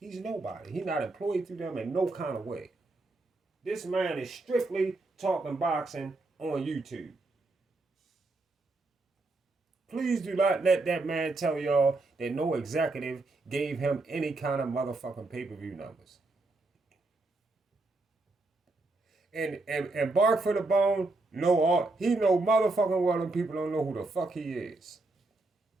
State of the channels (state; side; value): quieter; left; 3.2 dB